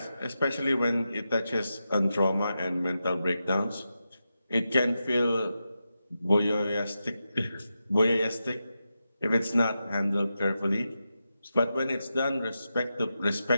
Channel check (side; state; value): both; inverted; correlation -0.89